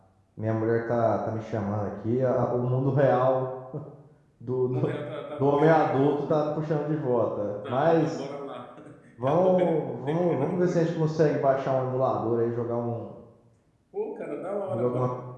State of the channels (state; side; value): identical; both; correlation 1.00